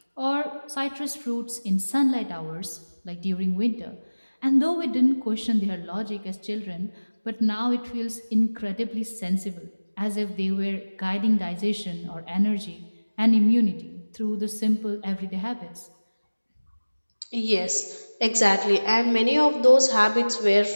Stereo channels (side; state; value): both; inverted; correlation -1.00